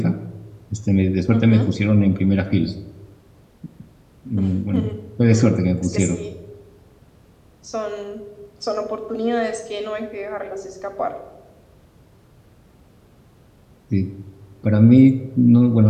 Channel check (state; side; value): identical; both; correlation 1.00